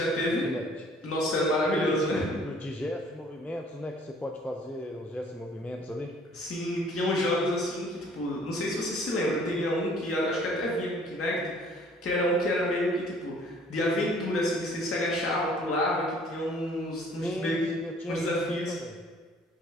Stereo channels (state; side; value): normal; both; correlation 0.56